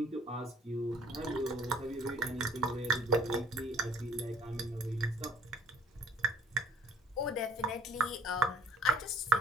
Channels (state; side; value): normal; both; correlation 0.57